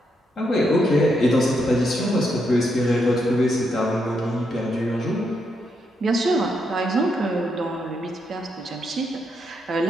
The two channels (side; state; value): both; normal; correlation 0.80